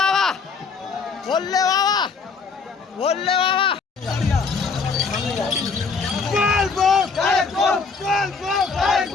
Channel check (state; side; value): quieter; right; 4.9 dB